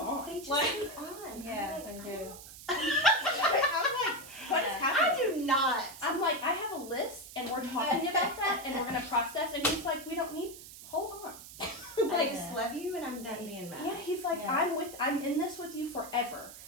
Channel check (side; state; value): right; noise; hiss, 15 dB below the sound